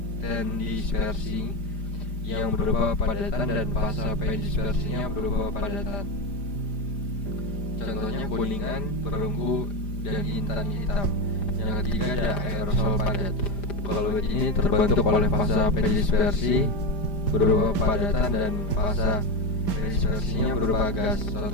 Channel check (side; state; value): right; late; 5.0 ms